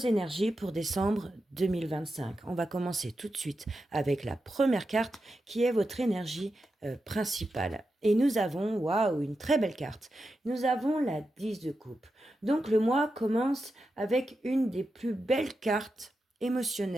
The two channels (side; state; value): both; normal; correlation 0.89